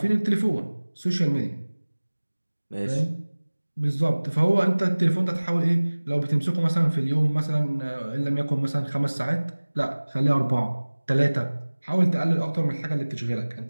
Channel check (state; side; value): inverted; both; correlation -1.00